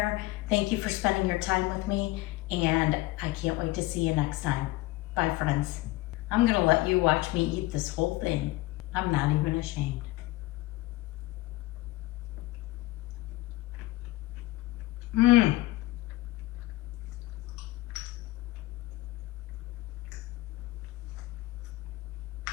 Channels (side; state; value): right; quieter; 19.1 dB